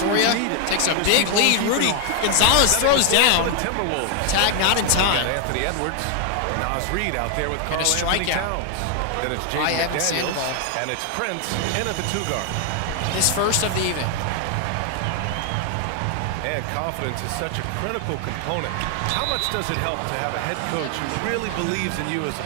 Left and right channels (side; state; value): both; different; correlation 0.00